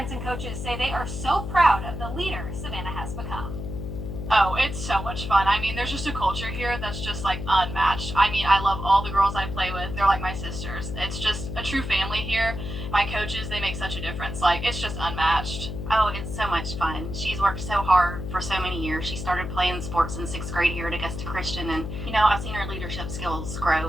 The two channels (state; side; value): noise; left; hum, 6 dB below the sound